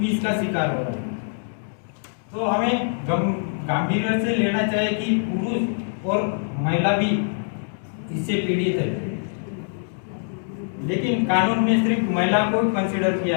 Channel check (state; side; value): silent; right; digital silence